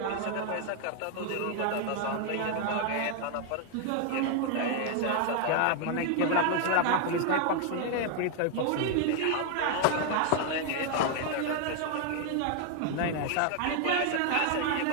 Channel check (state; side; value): different; both; correlation 0.00